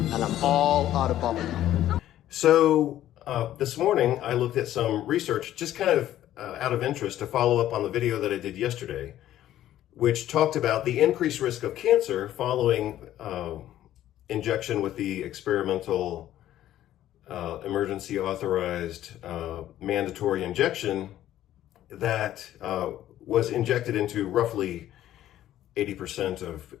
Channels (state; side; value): quieter; right; 12.8 dB